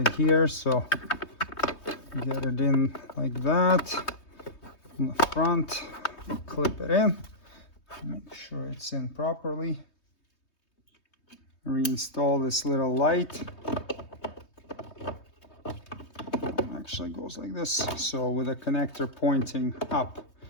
here, so get it in like that. In the front, clip it in. Make sure it's in properly. Reinstall this little light. Actually goes like this, so with a connector pointing up.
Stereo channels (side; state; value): right; late; 3.2 ms